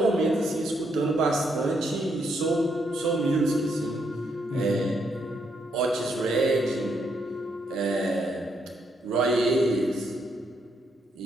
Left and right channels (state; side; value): normal; both; correlation 0.76